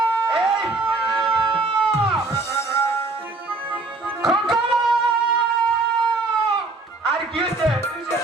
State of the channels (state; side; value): quieter; left; 3.3 dB